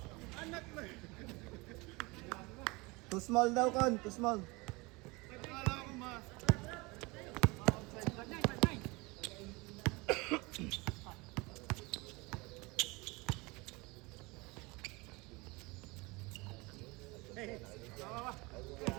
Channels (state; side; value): quieter; left; 25.2 dB